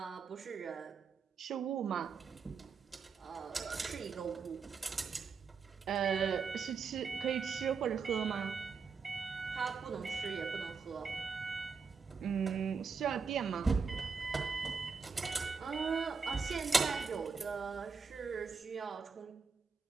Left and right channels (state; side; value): quieter; left; 5.3 dB